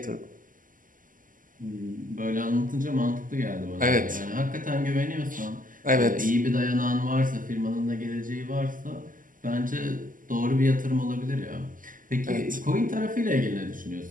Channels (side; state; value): left; late; 0.39 ms